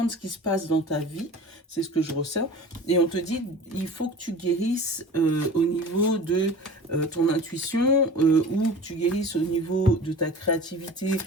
ce qui se passe dans ta vie, c'est ce que je ressens. Et on te dit, il faut que tu guérisses au niveau de ton intuition ou que tu guérisses au niveau de ta créativité.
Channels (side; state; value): both; normal; correlation 0.39